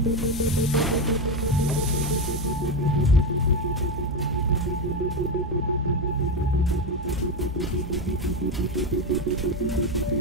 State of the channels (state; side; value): normal; both; correlation 0.12